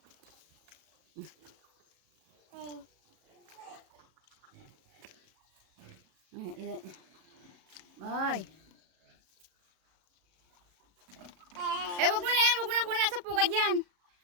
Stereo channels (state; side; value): late; left; 37 ms